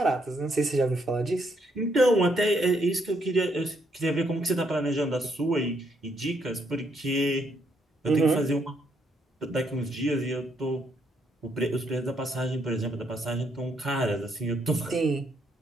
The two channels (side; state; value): both; normal; correlation 0.74